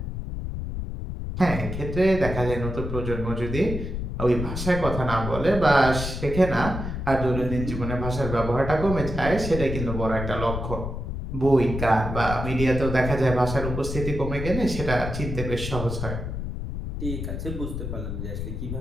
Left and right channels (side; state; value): left; noise; rumble, 5 dB below the sound